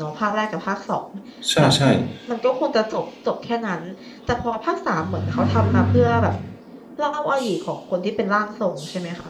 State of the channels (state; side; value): identical; both; correlation 1.00